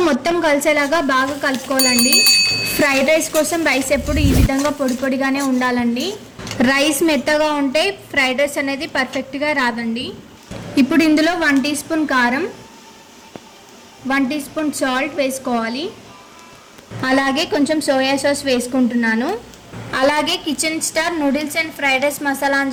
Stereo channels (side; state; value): both; identical; correlation 1.00